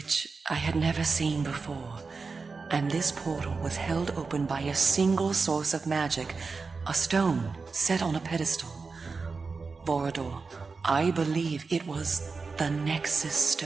I had never seen before. And this portal was held open by a single source of magic, a stone set on a pedestal. Vorador, I believe it was the Nexus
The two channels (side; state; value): left; quieter; 4.5 dB